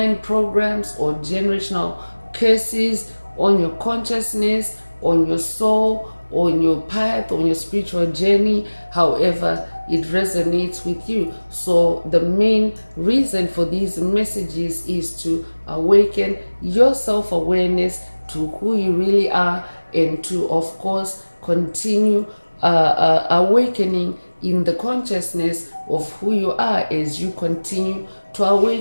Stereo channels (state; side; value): inverted; both; correlation -1.00